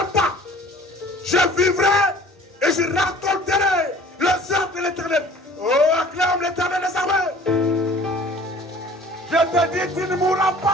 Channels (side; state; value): both; normal; correlation 0.48